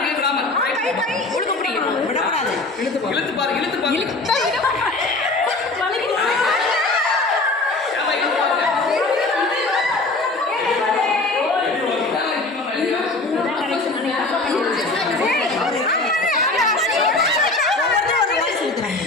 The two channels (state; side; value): quieter; right; 3.1 dB